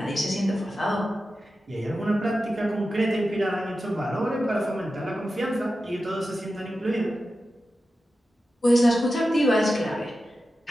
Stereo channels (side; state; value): both; normal; correlation 0.92